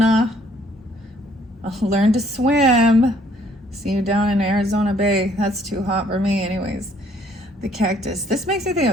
I'll learn to swim. See you down in Arizona Bay. That's too hot for me anyways. The cactus. This makes me think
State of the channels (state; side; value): normal; both; correlation 0.63